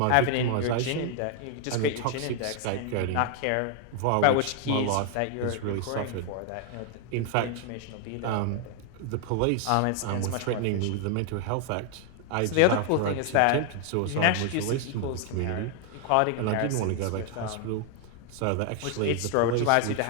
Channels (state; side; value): different; both; correlation 0.00